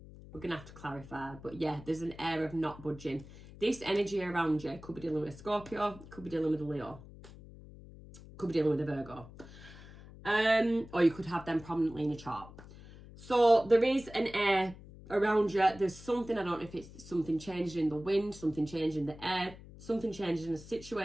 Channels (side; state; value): left; noise; hum, 18 dB below the sound